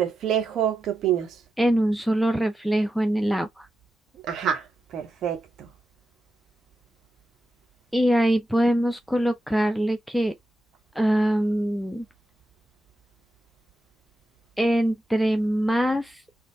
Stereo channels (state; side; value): normal; both; correlation 0.88